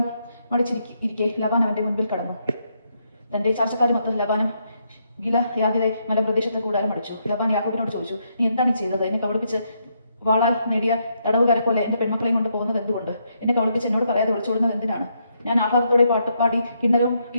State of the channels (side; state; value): both; inverted; correlation -0.77